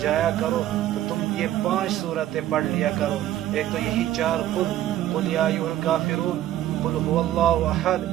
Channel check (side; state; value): left; quieter; 13.0 dB